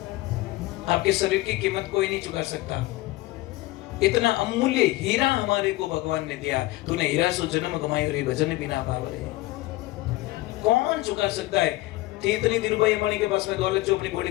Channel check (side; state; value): right; quieter; 18.8 dB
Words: आपके शरीर की कीमत कोई नहीं चुका सकता। इतना अमूल्य हीरा हमारे को भगवान ने दिया। तूने हीरा सो जन्म कमाई और भजन बिना पावले, कौन चुका सकता है? थी इतनी धीरूभाई अंबानी के पास में दौलत जो अपनी बॉडी